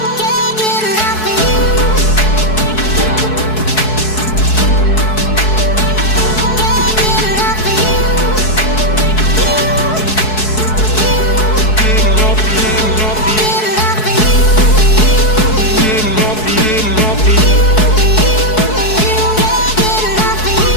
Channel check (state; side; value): late; right; 4.6 ms